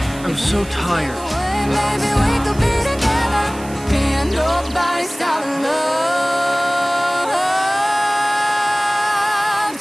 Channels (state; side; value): noise; right; hiss, 18 dB below the sound